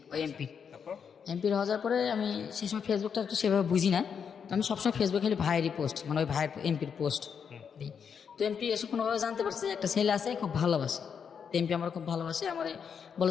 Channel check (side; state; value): right; quieter; 6.9 dB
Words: ওই এমপির। তারপর? এমপির হওয়ার পরে আমি সেই সময় ফেসবুকটা একটু সেভাবে বুঝি না, তো আমি সবসময় ফেসবুকে খালি ভাইয়েরই পোস্ট, মানে ওই ভাইয়ের এমপির পোস্ট দিই। তো এমপি এসে কোনোভাবে জানতে পারছে যে একটা ছেলে আছে খুব ভালোবাসে, তো এমপি আমার খুব ভালোবাসে, আমারে